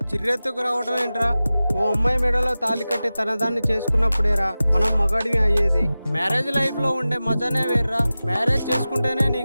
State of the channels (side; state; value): both; inverted; correlation -0.96